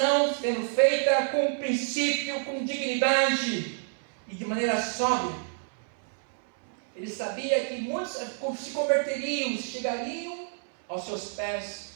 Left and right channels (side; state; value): left; silent; 59 dB below the other